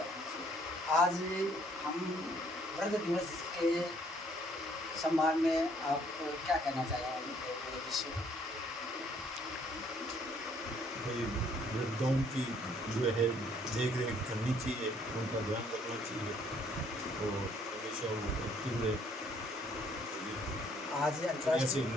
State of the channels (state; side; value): normal; both; correlation 0.64